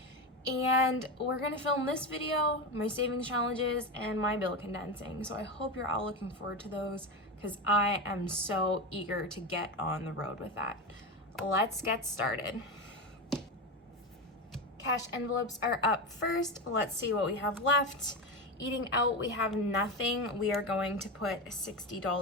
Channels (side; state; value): both; normal; correlation 0.17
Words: And we're gonna film this video, my savings challenges, and my bill condensing. So I hope you're all looking forward to those, because I am so eager to get on the road with that. Let's get started. Cash envelopes are up first. Let's see what we have left. Eating out, we have nothing. We are going to put